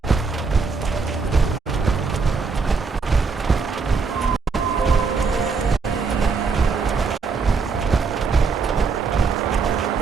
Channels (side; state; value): left; quieter; 4.8 dB